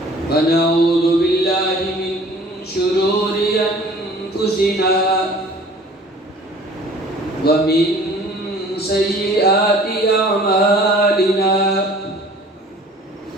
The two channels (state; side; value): normal; both; correlation 0.49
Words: ونعوذ بالله من شرور أنفسنا ومن سيئات أعمالنا